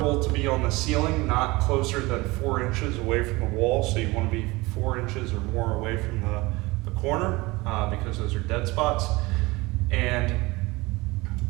to be on the ceiling, not closer than 4 inches away from the wall. So you want to be 4 inches or more away from the corner because those are dead spots. And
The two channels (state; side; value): quieter; left; 22.4 dB